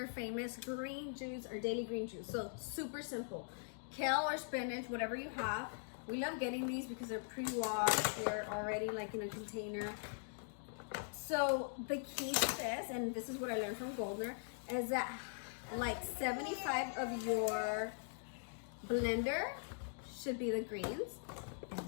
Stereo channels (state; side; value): silent; right; digital silence